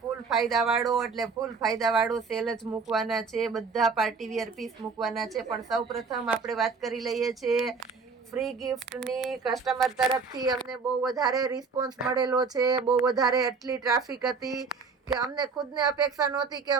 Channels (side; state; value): left; quieter; 4.9 dB